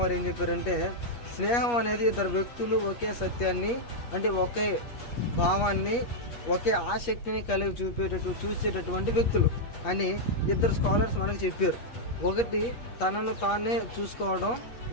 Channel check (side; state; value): right; late; 8.4 ms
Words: ఏం చెప్పారంటే, స్నేహం అనేది ఇద్దరు వ్యక్తులు ఒకే సత్యాన్ని, అంటే ఒకే భావాన్ని, ఒకే ఆసక్తిని కలిగి చూసేటటువంటి వ్యక్తులు అని ఇద్దరు స్కాలర్స్ మనకు చెప్పారు. ఒకటి తనను తానే చూసుకోవడం